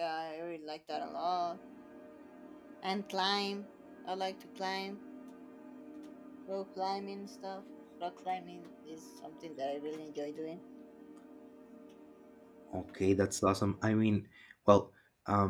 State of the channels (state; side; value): identical; both; correlation 1.00